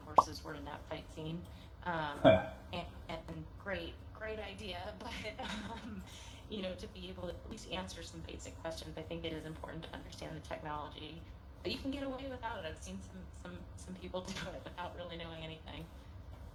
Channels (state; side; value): identical; both; correlation 1.00